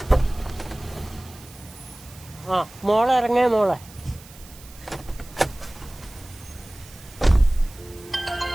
മോളെ ഇറങ്ങേ മോളെ.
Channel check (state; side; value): noise; right; hiss, 21 dB below the sound